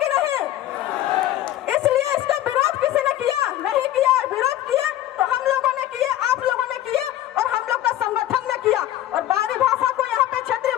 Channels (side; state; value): right; quieter; 13.3 dB